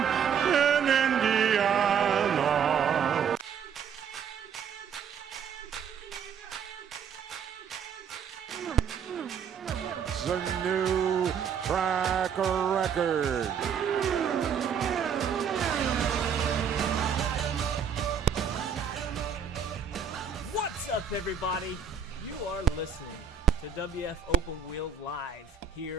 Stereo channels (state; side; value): quieter; left; 7.1 dB